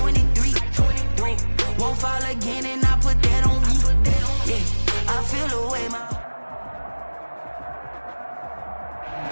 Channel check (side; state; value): both; inverted; correlation -1.00